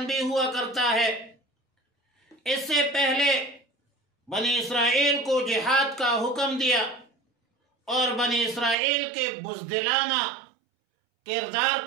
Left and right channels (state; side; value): drops out; left; at 8.8 s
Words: بھی ہوا کرتا ہے۔ اس سے پہلے بنی اسرائیل کو جہاد کا حکم دیا اور بنی اسرائیل کے بزدلانہ کردار